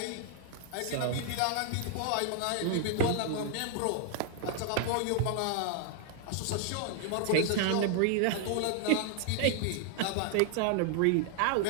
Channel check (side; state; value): both; different; correlation 0.00